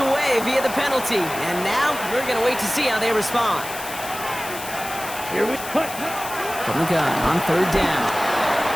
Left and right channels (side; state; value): left; noise; hiss, 11 dB below the sound